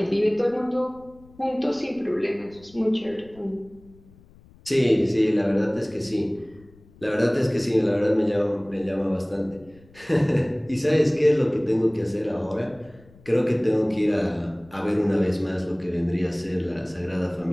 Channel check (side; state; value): left; noise; rumble, 26 dB below the sound